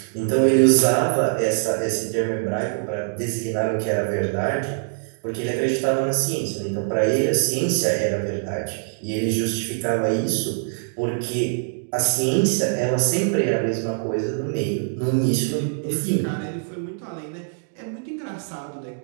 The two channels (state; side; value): silent; left; digital silence